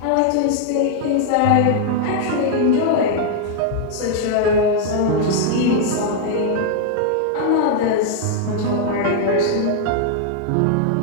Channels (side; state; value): both; different; correlation 0.00